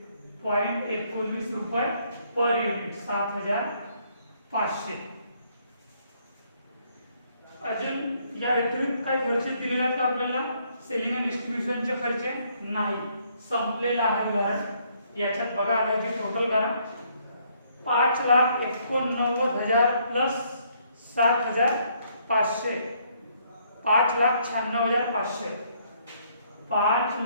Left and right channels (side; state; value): both; inverted; correlation -0.68